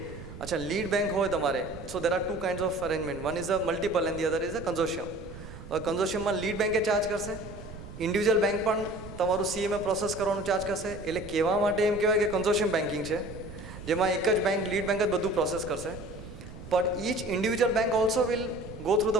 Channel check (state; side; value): noise; right; rumble, 13 dB below the sound